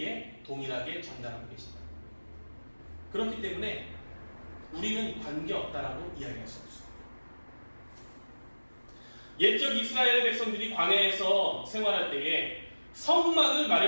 동일하게 전달하고 계십니다. 그렇기 때문에 우리는 관계없다라고 이야기할 수 없습니다. 옛적 이스라엘 백성들이 광야에서 생활할 때에 성막을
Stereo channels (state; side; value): inverted; both; correlation -1.00